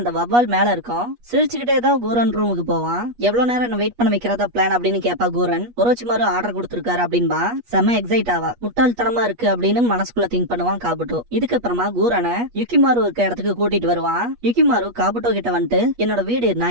வவ்வால் மேல இருக்கும். சிரிச்சுக்கிட்டே தான் கூரன் ரூமுக்கு போவான். எவ்வளவு நேரம் என்ன வெயிட் பண்ண வைக்கிறதா பிளான் அப்படின்னு கேப்பா கூரன். ஒரோச்சிமாரு ஆர்டர் கொடுத்திருக்காரு அப்படின்பா செம எக்ஸைட் ஆவா. முட்டாள்தனமா இருக்கு அப்படின்னு மனசுக்குள்ள திங்க் பண்ணுவான் காபுட்டோ. இதுக்கப்புறமா கூரனை யுகிமாரு இருக்க இடத்துக்கு கூட்டிட்டு வருவான். யுகிமாரு காபுட்டோ கிட்ட வந்துட்டு என்னோட வீடு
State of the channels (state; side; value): late; left; 8.3 ms